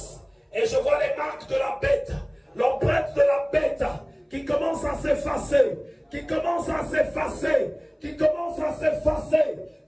Et je vois les marques de la bête, l'empreinte de la bête qui commence à s'effacer, qui commence à s'effacer, qui commence à s'effacer,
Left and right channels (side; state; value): both; identical; correlation 1.00